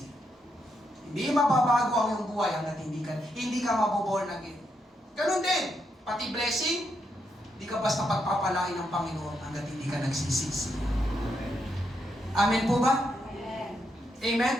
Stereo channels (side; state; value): both; normal; correlation 0.80